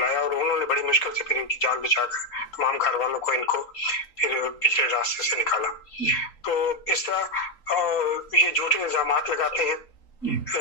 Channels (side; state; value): right; late; 3.8 ms